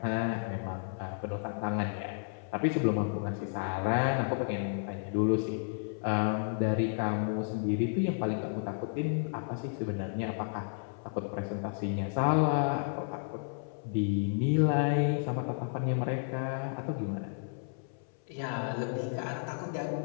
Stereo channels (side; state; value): right; silent; 56 dB below the other